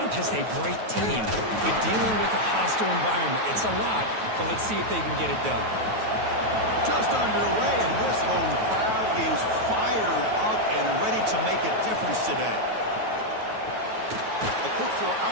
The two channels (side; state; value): left; late; 9.3 ms